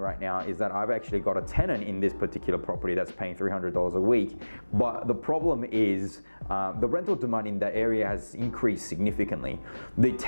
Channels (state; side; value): inverted; both; correlation -1.00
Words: now is that I've actually got a tenant in this particular property that's paying $300 a week, but the problem is the rental demand in that area has increased significantly. The